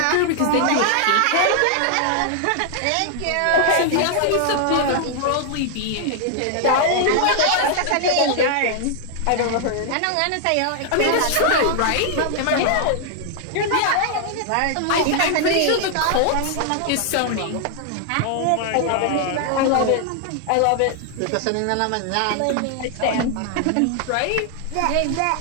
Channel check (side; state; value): both; different; correlation 0.00